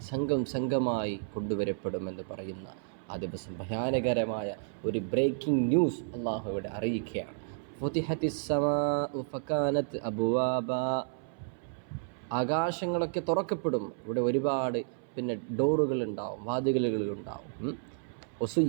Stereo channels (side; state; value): left; silent; 57 dB below the other